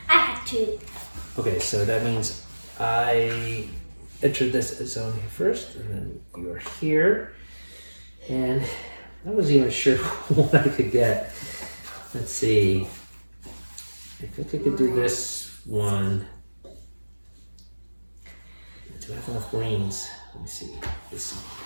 I have 2. Okay, so that means I entered this zone here first, and then you're here, and I wasn't even sure what I could get. Let's see. I think I could do this one. Do I have enough greens? Let me see. This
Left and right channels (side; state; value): both; inverted; correlation -1.00